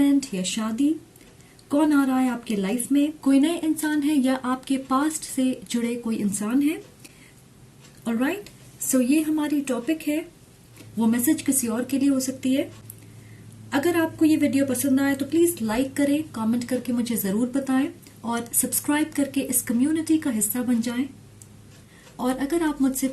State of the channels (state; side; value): identical; both; correlation 1.00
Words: या शादी। कौन आ रहा है आपके लाइफ में, कोई नए इंसान है या आपके पास्ट से जुड़े कोई इंसान है। ऑलराइट, सो ये हमारी टॉपिक है। वो मैसेज किसी और के लिए हो सकती है। अगर आपको ये वीडियो पसंद आए तो प्लीज लाइक करें, कमेंट करके मुझे जरूर बताएं और सब्सक्राइब करके इस कम्युनिटी का हिस्सा बन जाएं। और अगर आप मुझसे